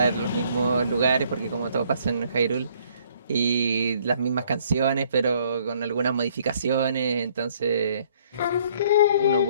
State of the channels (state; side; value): inverted; both; correlation -0.63